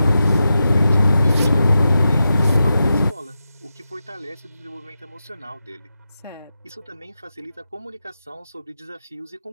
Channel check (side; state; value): both; inverted; correlation -0.90